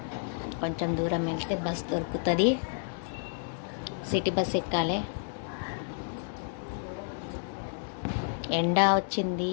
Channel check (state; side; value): silent; right; digital silence